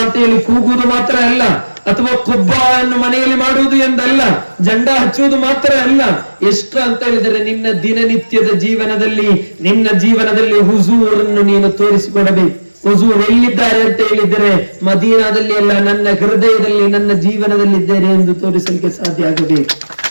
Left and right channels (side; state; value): both; inverted; correlation -1.00